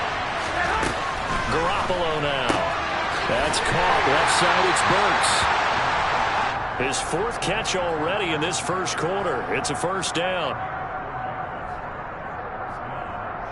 Garoppolo now. That's caught. Left side, it's Burks. His 4th catch already in this first quarter. It's a first down.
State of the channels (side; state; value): both; identical; correlation 1.00